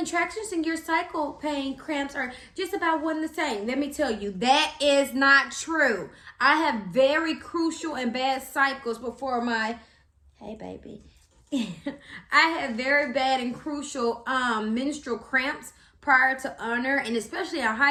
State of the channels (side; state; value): both; identical; correlation 1.00